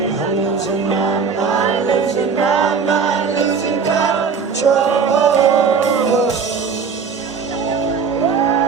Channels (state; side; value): quieter; left; 5.7 dB